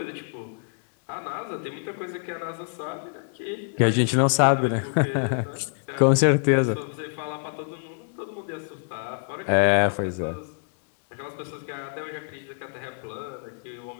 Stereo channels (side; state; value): right; silent; digital silence